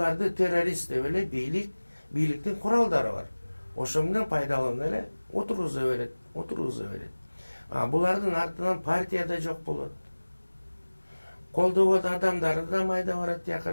террорист деп эле бийликтин куралдары бар. Ошо менен пайдаланып эле отургуза берет. Булардын артынан партия да жок болот. Колдогон адамдары да майда барат, тияка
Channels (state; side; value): inverted; both; correlation -1.00